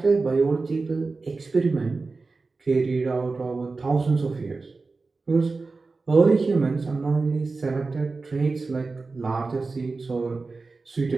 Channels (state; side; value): quieter; left; 3.9 dB